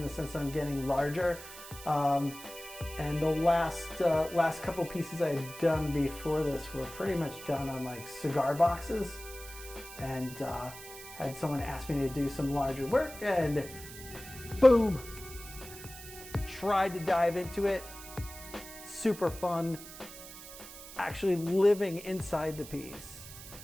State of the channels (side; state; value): right; noise; hiss, 14 dB below the sound